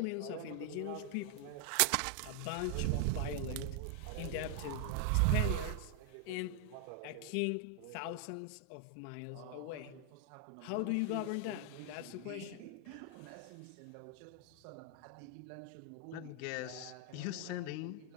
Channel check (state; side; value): different; both; correlation 0.00